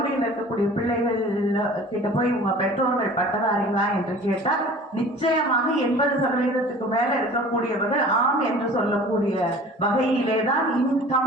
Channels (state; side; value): normal; both; correlation 0.44